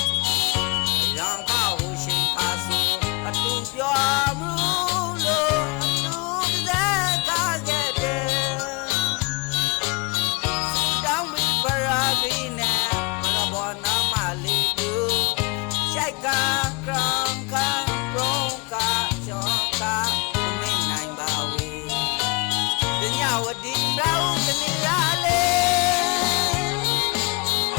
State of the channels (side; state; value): right; quieter; 30.7 dB